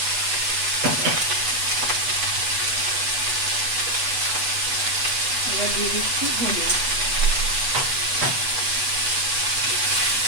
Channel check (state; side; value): late; left; 8.1 ms